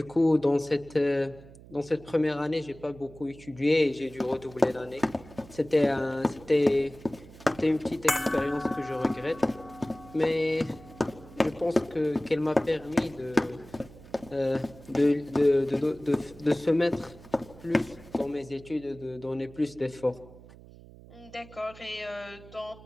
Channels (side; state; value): right; noise; hum, 20 dB below the sound